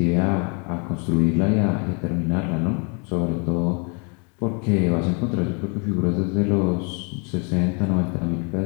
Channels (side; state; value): right; quieter; 35.5 dB